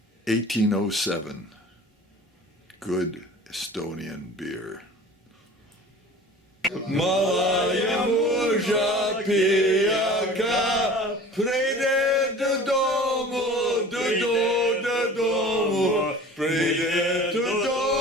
1807 good Estonian beer. Malaya muža pijaka, pride do domu, do domu, pride do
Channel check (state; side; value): normal; both; correlation 0.42